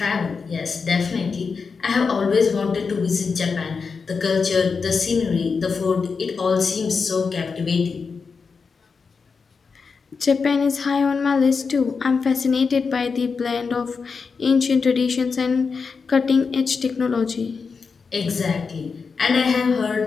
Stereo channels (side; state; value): right; quieter; 5.1 dB